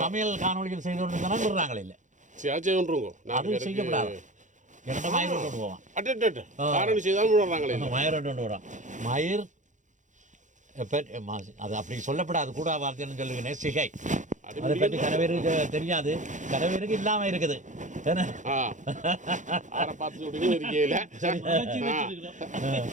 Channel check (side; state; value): left; late; 0.36 ms